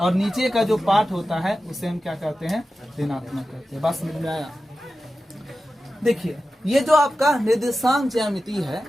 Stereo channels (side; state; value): both; normal; correlation 0.93